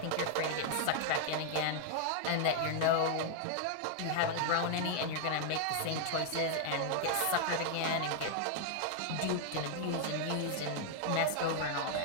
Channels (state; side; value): different; both; correlation 0.00